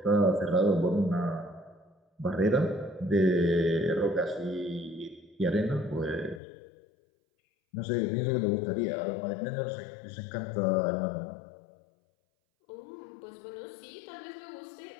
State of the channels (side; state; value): right; drops out; at 6.4 s